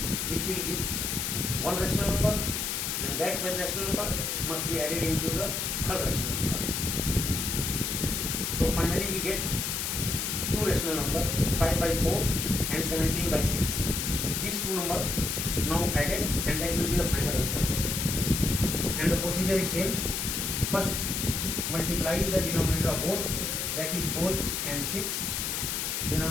which will give one rational number, and that one rational number must be added into the third rational number. So finally we get two rational number, 5 by 4 and 17 by 6. These two numbers now added, and that will be the final answer. And the procedure is same. First multiply the denominator of both, that is 4 and 6,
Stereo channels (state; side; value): noise; left; hiss, 1 dB below the sound